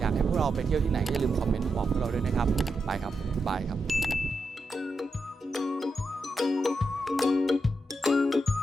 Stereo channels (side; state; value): both; normal; correlation 0.86